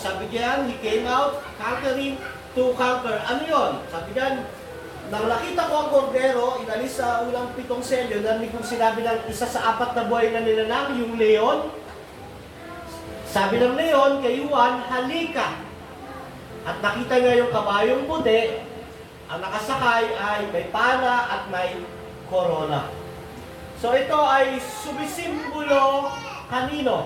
Sabi diyan, he came out conquering to conquer. Ano yun? Sabi diyan, nang nakita ko ang kordero, inalis sa unang 7 selyo, narinig kong sinabi ng isa sa 4 na buhay na nilalang, yung leon. Sabi ng leon kay Juan, halika. At nakita niya yung kabayong puti, ang nakasakay ay may pana at may corona. So ito ay sumisimbolo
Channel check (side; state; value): both; identical; correlation 1.00